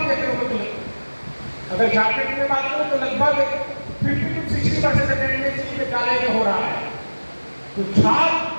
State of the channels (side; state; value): both; inverted; correlation -1.00